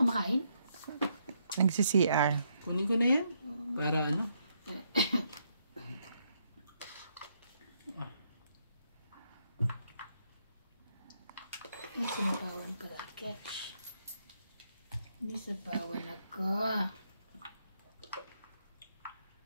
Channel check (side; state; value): both; inverted; correlation -0.76